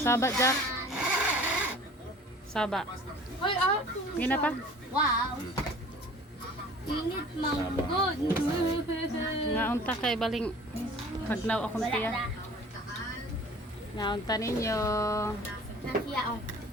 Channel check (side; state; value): both; normal; correlation 0.46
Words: Jack. Saba. Hoy, Gina pa. wow. Init manggod. Naunta kay baling pagnaw akong tiya. Naunta ninyo. Nasiya oh.